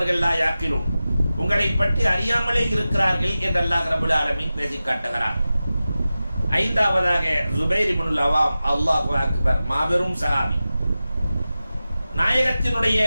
லா யாக்கிலும், உங்களை பற்றி அறியாமலே இருக்கிறார்கள் என்று அல்லாஹ் ரப்பல் ஆலமீன் பேசி காட்டுகிறார். 5வதாக ஜுபைர் இப்னுல் அவாம், அல்லாஹு அக்பர், மாபெரும் சஹாபி, நாயகத்தினுடைய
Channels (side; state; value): both; inverted; correlation -0.95